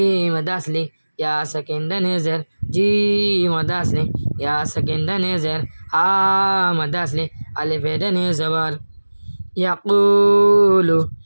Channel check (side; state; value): both; inverted; correlation -1.00